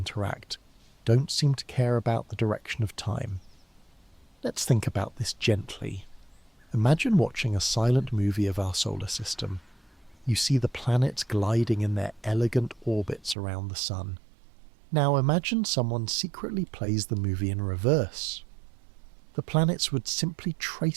don't seem to care about the direction of time. Let's think about this gently. Imagine watching a silent movie of our solar system. You see the planets gliding in their elegant orbits around the sun. Now imagine someone secretly plays the movie in reverse. The planets would simply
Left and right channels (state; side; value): drops out; left; at 13.4 s